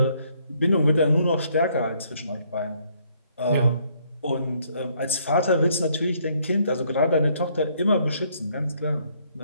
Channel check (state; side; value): inverted; both; correlation -0.68